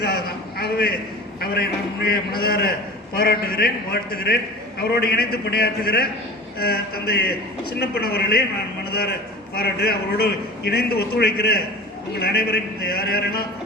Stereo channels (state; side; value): normal; both; correlation 0.37